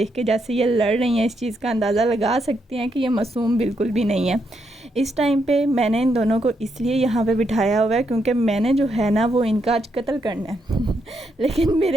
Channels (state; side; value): normal; both; correlation 0.79